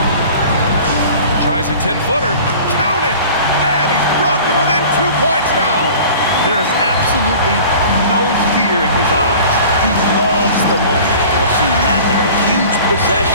Tries a 10-footer. Count it! And he's brought them within 2 points now. There is absolutely no fear in his eyes. He loves the moment. I've seen that there. A huge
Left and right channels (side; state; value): both; inverted; correlation -0.43